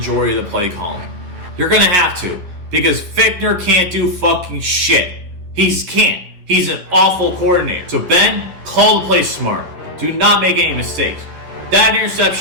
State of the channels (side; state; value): left; late; 11 ms